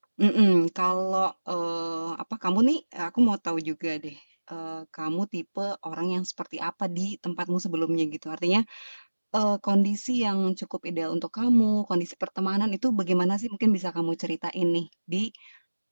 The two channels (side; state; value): both; inverted; correlation -1.00